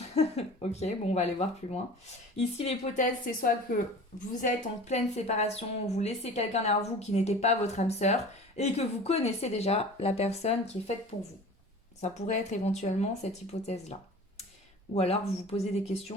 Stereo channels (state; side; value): normal; both; correlation 0.40